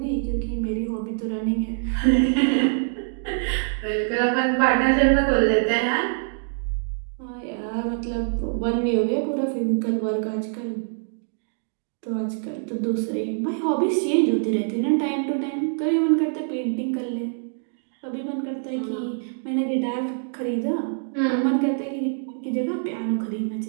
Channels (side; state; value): left; silent; digital silence